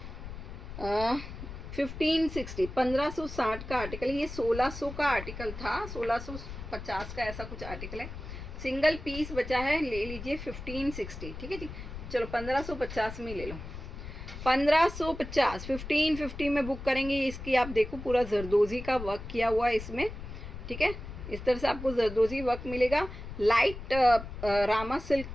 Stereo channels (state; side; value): noise; left; rumble, 10 dB below the sound